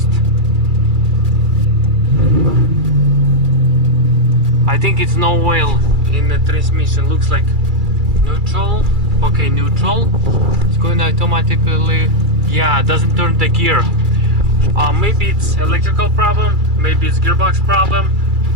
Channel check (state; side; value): late; left; 2.3 ms